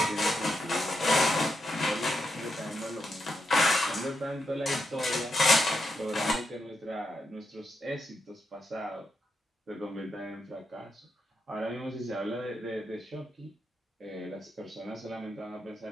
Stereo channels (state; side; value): normal; both; correlation 0.83